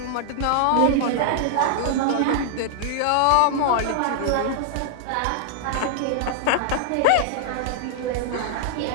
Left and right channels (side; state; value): both; different; correlation -0.01